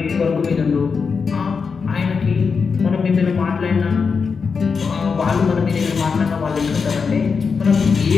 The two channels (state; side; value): quieter; right; 5.4 dB